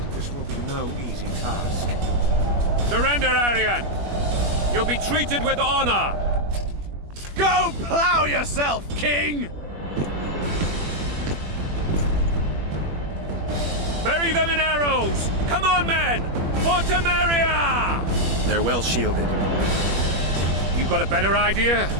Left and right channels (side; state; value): left; late; 21 ms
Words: this will be no easy task. Surrender, Aryan! You'll be treated with honor! Go plow yourself, king! Bury them in arrows! Come on, men! For Temeria! They're well shielded. You got a better idea?